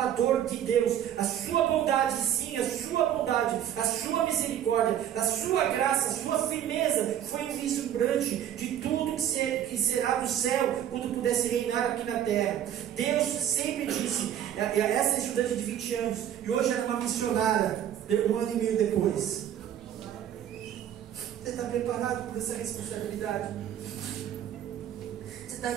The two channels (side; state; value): left; quieter; 10.5 dB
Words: de Deus. A sua bondade, sim, a sua bondade, a sua misericórdia, a sua graça, a sua firmeza foi vislumbrante de tudo que será do céu quando pudesse reinar aqui na terra. Deus sempre disse, essa estudante de 20 anos, e hoje era uma missionária, 1 ano e meio depois. Você está preparado por essa responsabilidade? Você está